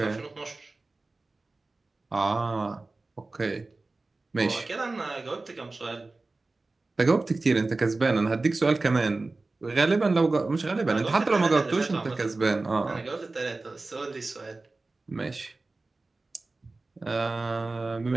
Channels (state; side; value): quieter; left; 3.4 dB